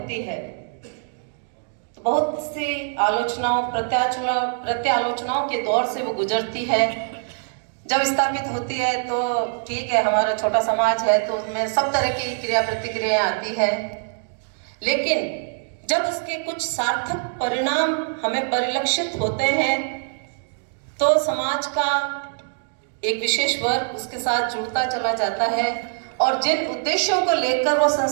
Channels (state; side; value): silent; left; digital silence